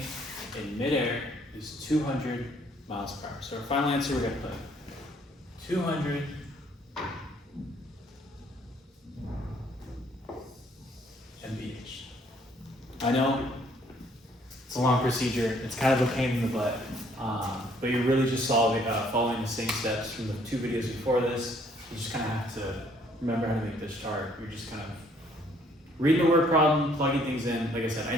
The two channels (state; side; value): normal; both; correlation 0.63